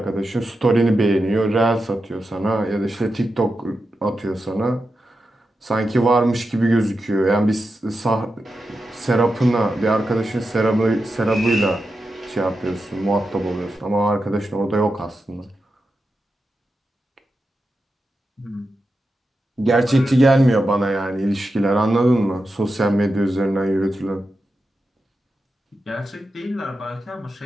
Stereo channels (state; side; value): normal; both; correlation 0.89